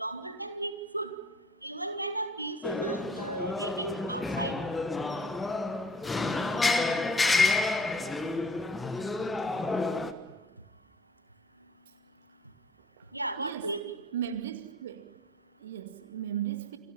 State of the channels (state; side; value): normal; both; correlation 0.52